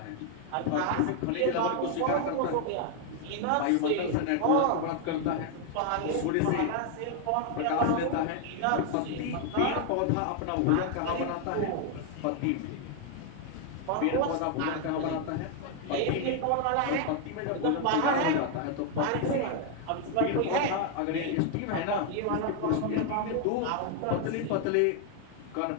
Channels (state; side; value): different; both; correlation 0.00